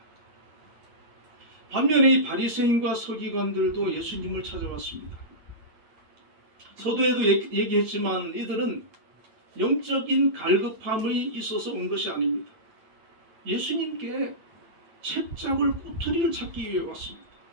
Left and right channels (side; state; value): left; late; 9.2 ms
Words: 반면에 이 바리새인과 서기관들도 예수님을 찾아왔습니다. 서두에도 얘기했지만 이들은 영적인 갈급함이 있어서 온 것이 아닙니다. 예수님께 채잡을 꼬투리를 찾기 위해 왔습니다.